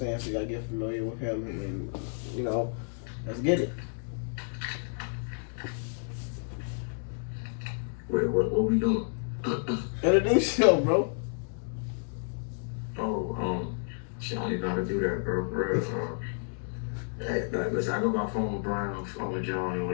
So y'all get familiar with him, and you know, let's get it. Wait, what we doing? Introduce yourself, bro. Shit, I don't even know how to do that, bro. For real. Listen, I go by phone with Brian, phone with John, or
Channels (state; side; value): silent; right; 57 dB below the other